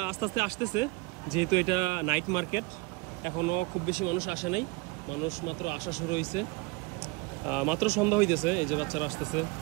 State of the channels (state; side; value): quieter; left; 24.8 dB